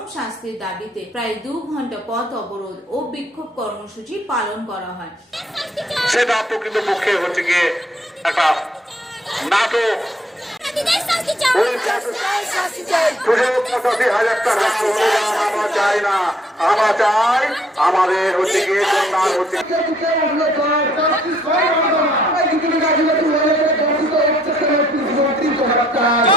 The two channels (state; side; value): normal; both; correlation 0.66